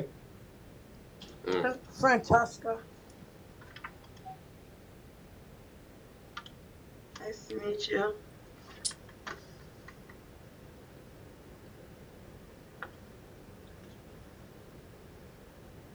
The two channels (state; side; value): identical; both; correlation 1.00